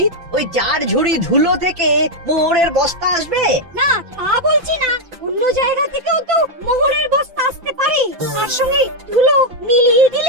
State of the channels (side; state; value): left; late; 5.9 ms